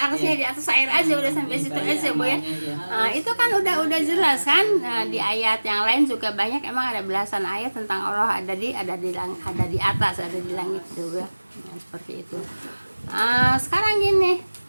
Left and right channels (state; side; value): inverted; both; correlation -1.00